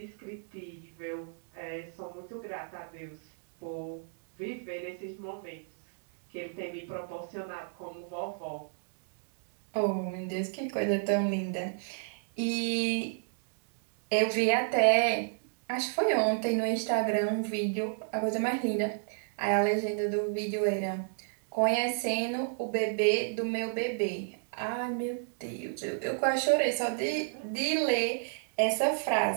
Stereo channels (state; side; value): silent; left; digital silence